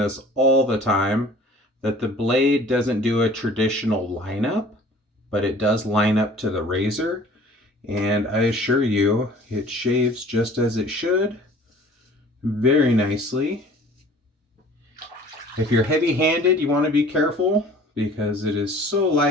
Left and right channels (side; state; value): both; normal; correlation 0.48